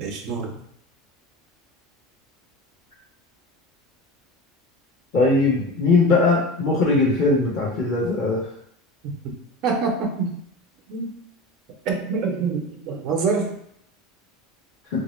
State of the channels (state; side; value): normal; both; correlation 0.31